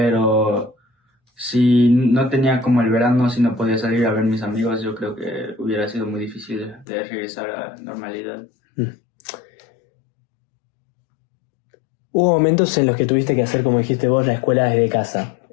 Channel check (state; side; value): drops out; right; at 6.9 s